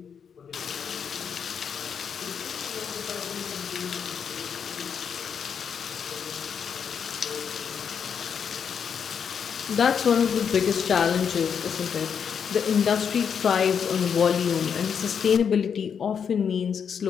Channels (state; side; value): quieter; right; 7.1 dB